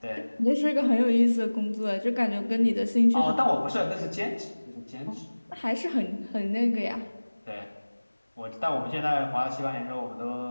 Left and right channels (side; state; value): both; inverted; correlation -1.00